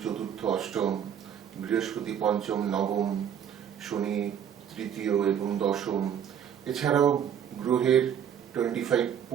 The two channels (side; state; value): left; quieter; 8.8 dB